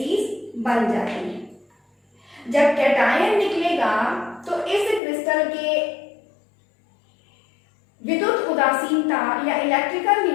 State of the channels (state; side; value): drops out; right; at 5.0 s